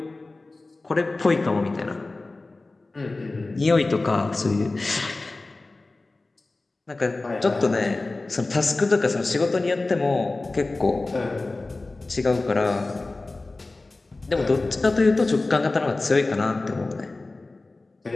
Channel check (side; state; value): right; quieter; 3.2 dB